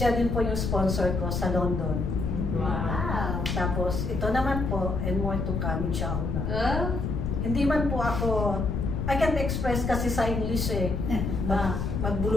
din po yung sponsor ko sa London. Wow. Tapos ito naman po, and more to come, inshallah. Hindi man po ako, I can't express kasi sa English eh,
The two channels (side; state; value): left; noise; rumble, 1 dB below the sound